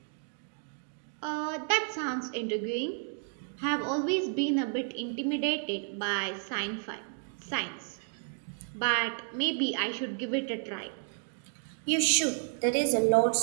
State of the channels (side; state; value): left; silent; 57 dB below the other